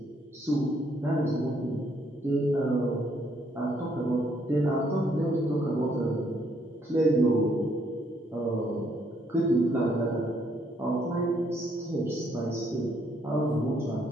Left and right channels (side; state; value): both; normal; correlation 0.70